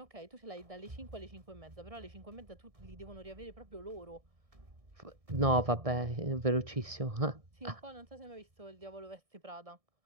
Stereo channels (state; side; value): late; left; 1.6 ms